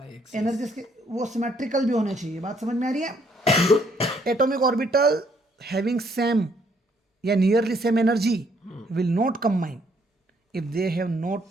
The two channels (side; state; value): both; normal; correlation 0.68